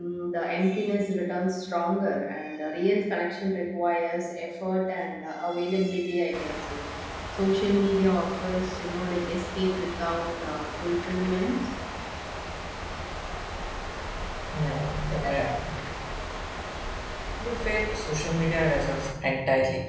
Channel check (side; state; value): both; identical; correlation 1.00